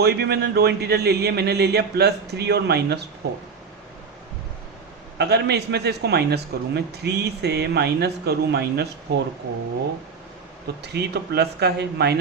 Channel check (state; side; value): quieter; left; 5.4 dB